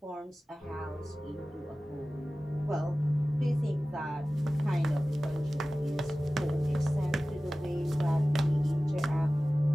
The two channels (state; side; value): normal; both; correlation 0.96